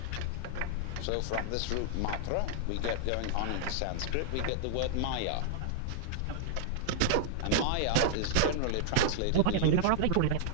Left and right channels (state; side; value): different; both; correlation -0.01